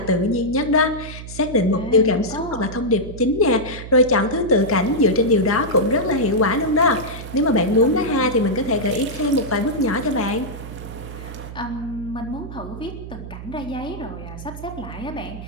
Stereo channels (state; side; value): noise; right; hum, 11 dB below the sound